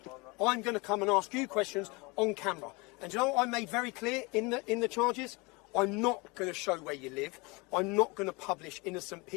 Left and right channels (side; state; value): right; quieter; 27.0 dB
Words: I'm going to come and ask you questions on camera. And you know what I made very clear in the charges? I'm not going to show where you live. I'm not going to publish innocent